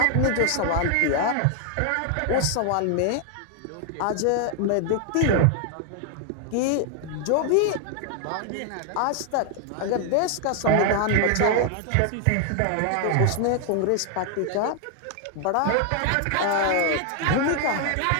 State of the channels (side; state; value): both; different; correlation 0.00